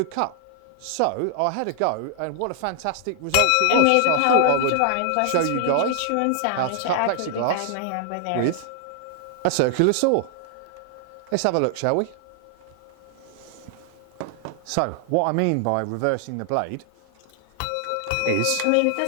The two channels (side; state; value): both; different; correlation -0.01